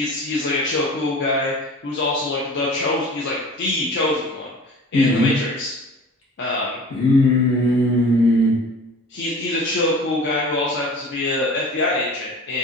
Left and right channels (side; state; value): both; normal; correlation 0.40